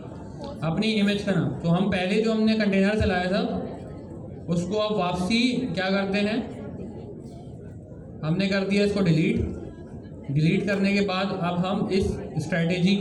अपनी इमेज का नाम। तो हम पहले जो हमने कंटेनर चलाया था उसको अब वापसी क्या करते हैं? हमने कर दिया इसको डिलीट करने के बाद अब हम इस स्ट्रेटेजी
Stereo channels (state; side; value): identical; both; correlation 1.00